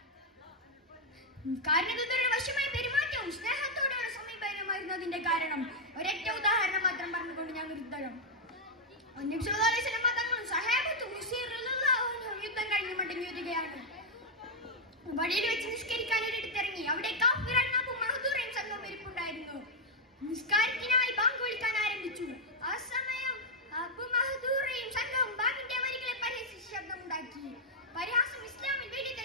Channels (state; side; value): normal; both; correlation -0.02